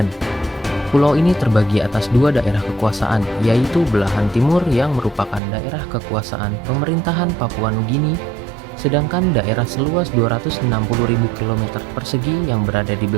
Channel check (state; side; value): drops out; left; at 5.4 s